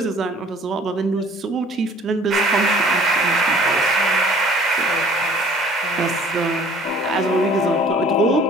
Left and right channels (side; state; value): both; normal; correlation 0.52